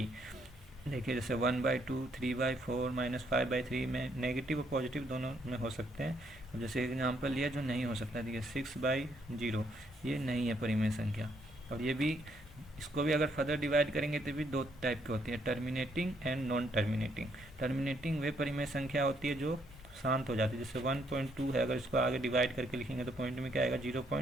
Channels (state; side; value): normal; both; correlation 0.72